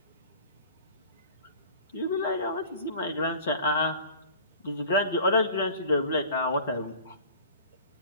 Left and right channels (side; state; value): both; inverted; correlation -0.43